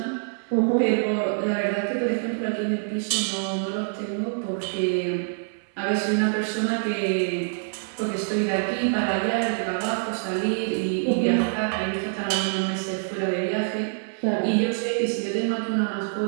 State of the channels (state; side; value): silent; left; 61 dB below the other